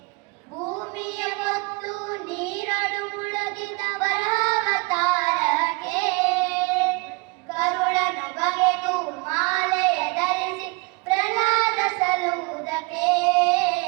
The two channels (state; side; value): quieter; left; 28.8 dB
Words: ಭೂಮಿಯ ಹೊತ್ತು ನೀರಳು ಮುಳುಗಿದ ವರಾವತಾರಕ್ಕೆ ಕರುಳನು ಬಗೆದು ಮಾಲೆಯ ಧರಿಸಿ ಪ್ರಹ್ಲಾದ ಸಲುವುದಕ್ಕೆ